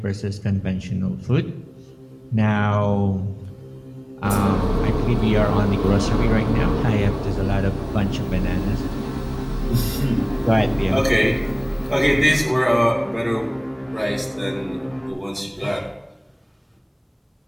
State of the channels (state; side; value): identical; both; correlation 1.00